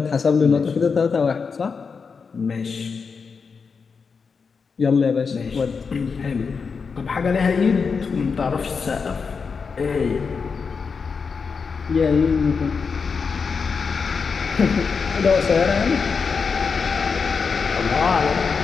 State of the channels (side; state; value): right; quieter; 5.4 dB